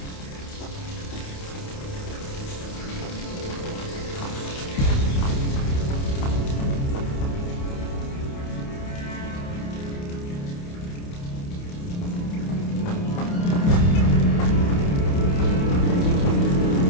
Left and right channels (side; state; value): right; late; 29 ms